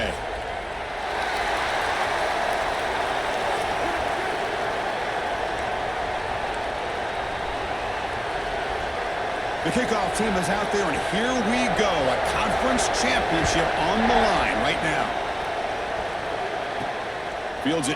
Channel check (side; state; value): both; identical; correlation 1.00